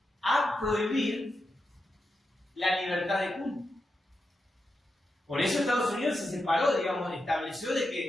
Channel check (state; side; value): normal; both; correlation 0.87